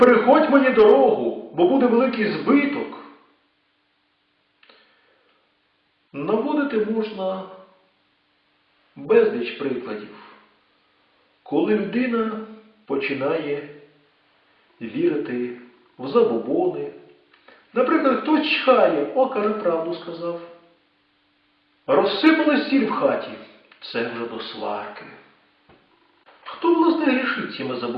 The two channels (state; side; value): identical; both; correlation 1.00